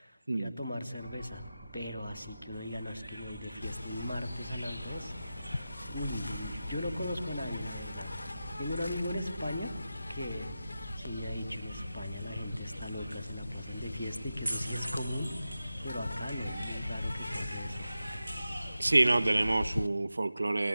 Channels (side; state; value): both; inverted; correlation -0.93